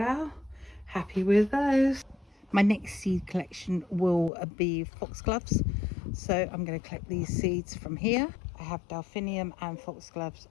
Happy with those. My next seed collection will be foxgloves, so I'm going to collect these seeds from here. I have delphinium and foxgloves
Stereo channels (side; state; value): right; drops out; at 4.3 s